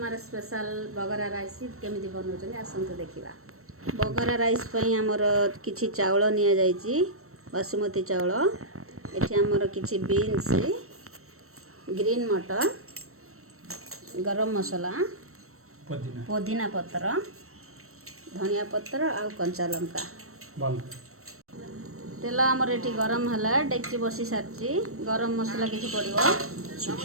स्पेशल बगरा राइस केमी बनाऊँ आसतु देखा बगरा राइस आमर किसी चाउल नि बासुमती चाउल एठी आमर किसी बीन्स ग्रीन मटर गरम मसला पुदीना पत्र धनिया पत्र आ कंचा लंका तेल आमर ये गरम है डेक्ची बसी सारी गरम मसला किसी पड़ो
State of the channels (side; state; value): left; late; 0.63 ms